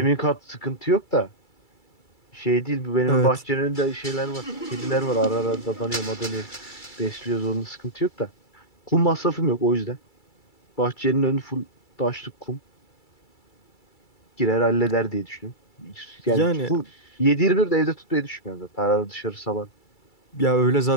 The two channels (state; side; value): late; right; 2.3 ms